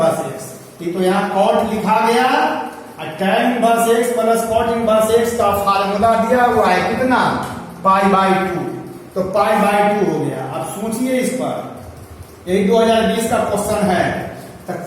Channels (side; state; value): both; identical; correlation 1.00